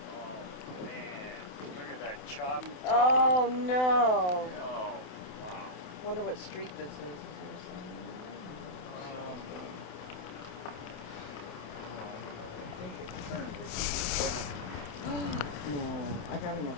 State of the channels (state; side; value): late; right; 28 ms